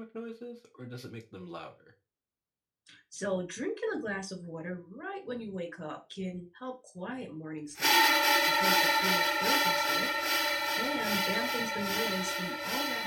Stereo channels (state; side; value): identical; both; correlation 1.00